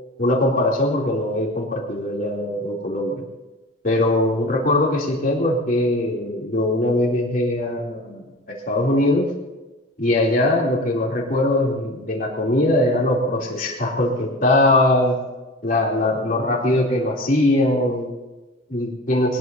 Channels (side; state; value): both; normal; correlation 0.36